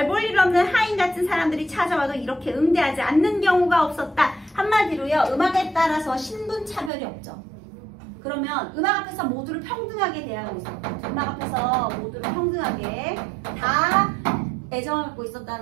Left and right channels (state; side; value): drops out; left; at 6.9 s